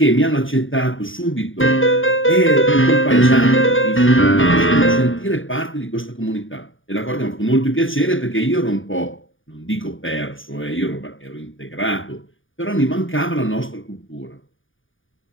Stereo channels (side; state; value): right; late; 0.57 ms